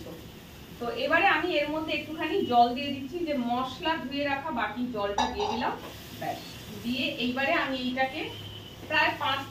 তো এবারে আমি এর মধ্যে একটুখানি জল দিয়ে দিচ্ছি, যে মশলা ধুয়ে রাখা বাকি জলটা দিয়ে দিলাম। ব্যাস, দিয়ে এইবারে আমি এইটাকে প্রায় 5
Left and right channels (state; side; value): identical; both; correlation 1.00